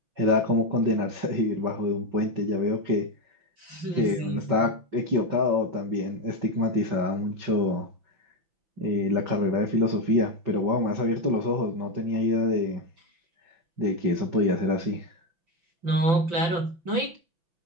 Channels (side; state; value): left; late; 5.9 ms